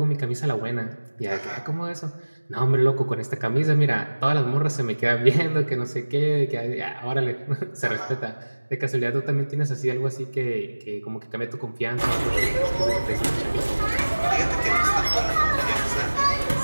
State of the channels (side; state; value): both; inverted; correlation -1.00